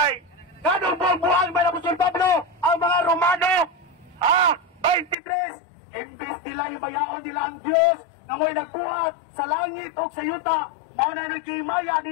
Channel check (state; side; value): drops out; right; at 5.2 s